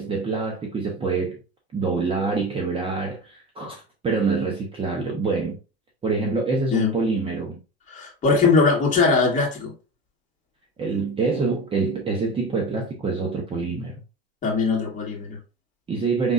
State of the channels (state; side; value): normal; both; correlation 0.27